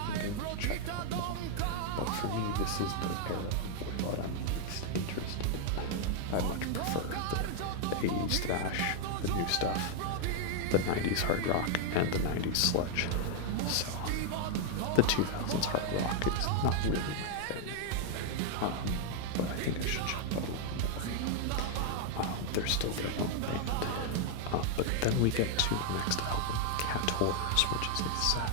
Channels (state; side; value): different; both; correlation 0.00